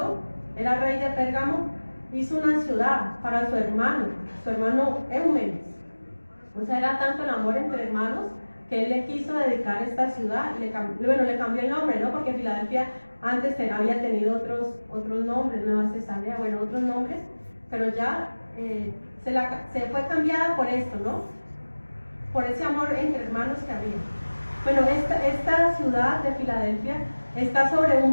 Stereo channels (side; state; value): both; inverted; correlation -1.00